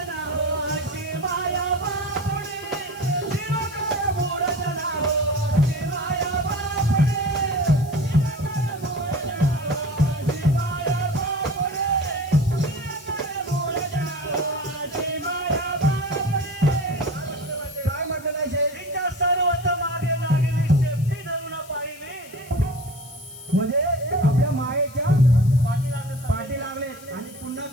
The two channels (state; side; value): noise; left; hiss, 20 dB below the sound